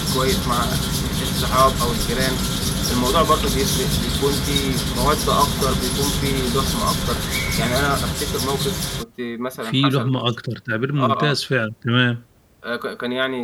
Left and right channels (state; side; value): identical; both; correlation 1.00